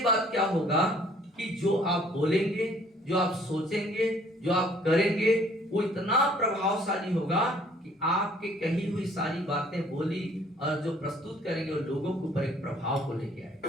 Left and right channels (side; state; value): both; normal; correlation 0.58